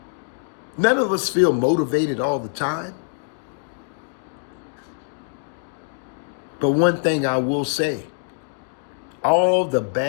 None of us feel motivated all the time. But one thing I will say, all the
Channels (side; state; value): right; silent; digital silence